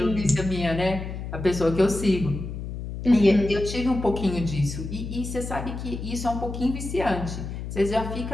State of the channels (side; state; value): left; noise; hum, 7 dB below the sound